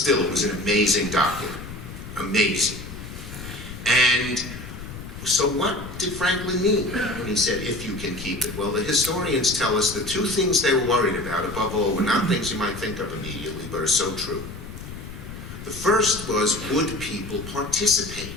it was an amazing document. Amazing. And so what did Franklin mean when he said, "if you can keep it"? Well, the historians tell us the 2 things they were worried about, above all, were not things you might think of immediately, but are so true. The first was, would people participate?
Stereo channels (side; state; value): left; noise; rumble, 11 dB below the sound